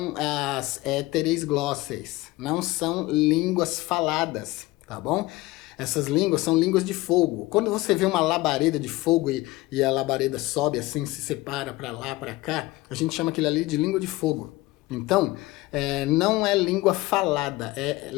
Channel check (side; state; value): right; quieter; 19.7 dB